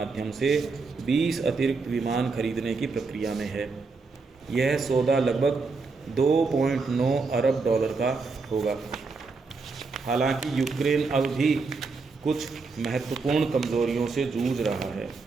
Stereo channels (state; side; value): quieter; left; 4.2 dB